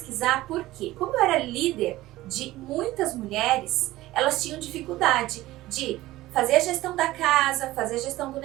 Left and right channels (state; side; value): quieter; left; 17.0 dB